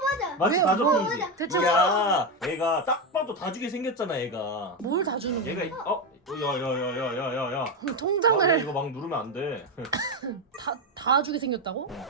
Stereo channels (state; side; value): normal; both; correlation 0.10